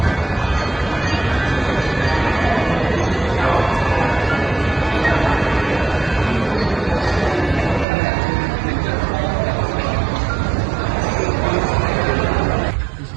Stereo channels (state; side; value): drops out; left; at 7.9 s